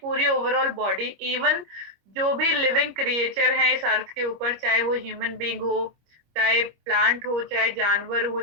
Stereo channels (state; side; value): late; left; 25 ms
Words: ओवरऑल बॉडी, इवन जो भी लिविंग क्रिएचर हैं इस अर्थ के ऊपर, चाहे वो ह्यूमन बींग हो, चाहे प्लांट हो, चाहे जानवर हो,